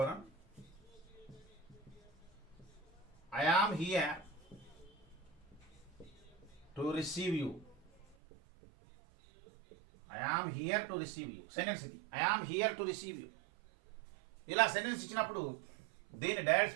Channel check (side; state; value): left; drops out; at 8.2 s